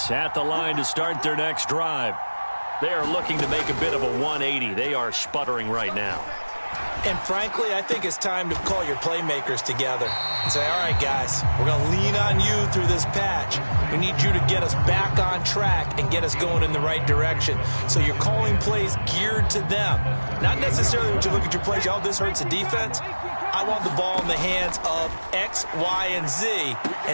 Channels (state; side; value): inverted; both; correlation -1.00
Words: at the line to start their next drive. They are looking to make a bit of a 180. They are sputtering right now. And frankly, I think it's time to call your playmakers together and say, all right, guys, we're going to lean on you through this patch. We need you to get us back on track and get us going in the right direction. So you're calling plays geared to them. Not necessarily when you look at your plays, oh, this hurts the defense. I want the ball in the hands of X, Y, and Z